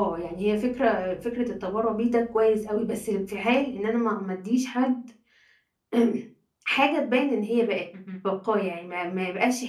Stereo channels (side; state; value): both; identical; correlation 1.00